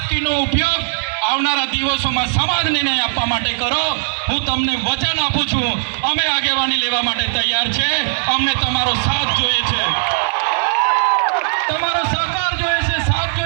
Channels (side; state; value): left; silent; digital silence